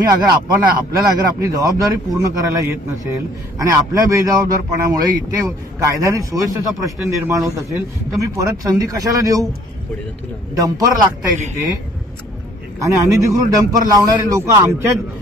आपल्याला अगर आपली जबाबदारी पूर्ण करायला येत नसेल आणि आपल्या बेजबाबदारपणामुळे इथे कायद्याने सुव्यवस्थेचा प्रश्न निर्माण होत असेल तर मी परत संधी कशाला देऊ? डंपर लागताय तिथे आणि अनधिकृत डंपर लावणारे लोक आमच्याच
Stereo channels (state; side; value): normal; both; correlation 0.57